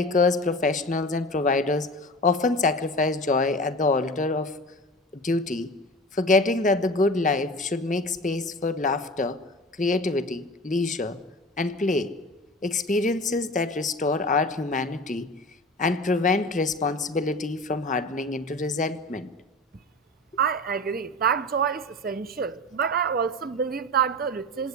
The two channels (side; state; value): both; normal; correlation 0.35